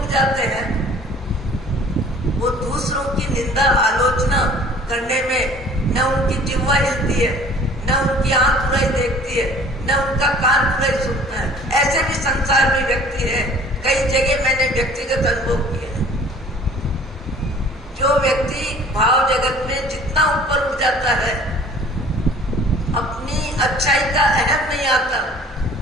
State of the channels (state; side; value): normal; both; correlation 0.50